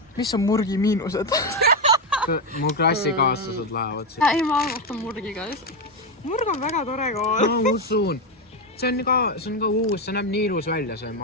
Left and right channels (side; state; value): both; normal; correlation 0.09